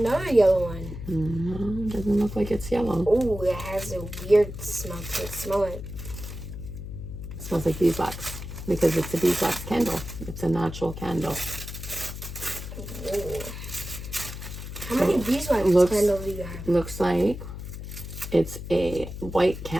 yellow one. No, doesn't look like it's yellow. Oh, it has a weird smell to it. Smell it. It smells like beeswax because it's a beeswax candle. It's a natural candle. Whoa. How many beeswax looks- candles do you have? Looks like it's a white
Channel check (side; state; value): left; noise; hum, 9 dB below the sound